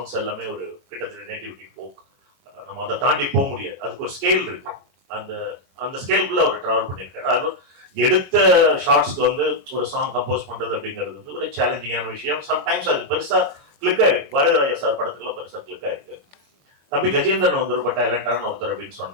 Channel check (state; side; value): late; left; 22 ms